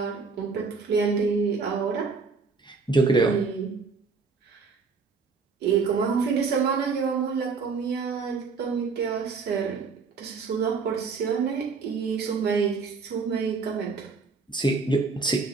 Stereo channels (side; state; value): left; quieter; 4.8 dB